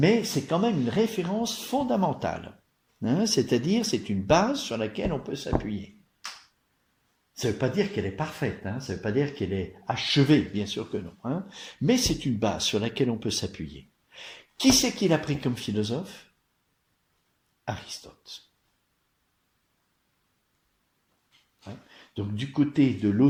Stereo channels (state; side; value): identical; both; correlation 1.00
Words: c'est quand même une référence fondamentale. C'est-à-dire, c'est une base sur laquelle on peut s'appuyer. Ça ne veut pas dire qu'elle est parfaite, ça ne veut pas dire qu'elle est achevée, bien sûr que non. Mais c'est une base sur laquelle on peut s'appuyer. Qui c'est qu'il a pris comme philosophe ? Aristote. Donc du côté de